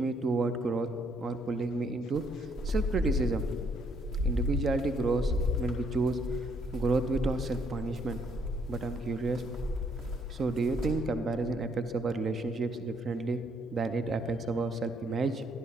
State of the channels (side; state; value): both; normal; correlation 0.69